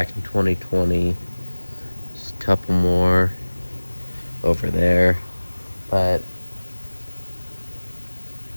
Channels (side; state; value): both; inverted; correlation -1.00